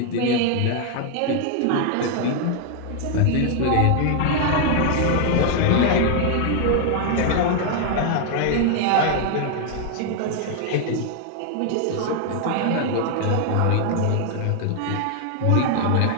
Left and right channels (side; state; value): both; different; correlation 0.00